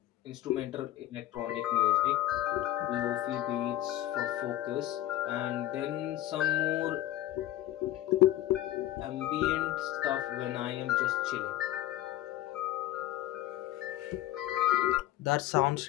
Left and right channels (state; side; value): quieter; right; 14.2 dB